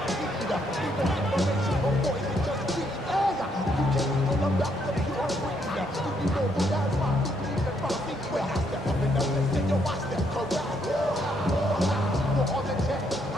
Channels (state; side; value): normal; both; correlation 0.73